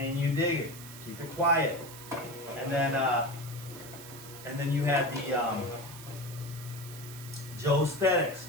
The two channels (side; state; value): right; noise; hiss, 15 dB below the sound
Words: you dig it? Keep it quiet. And then you had the Joe Aesthetics.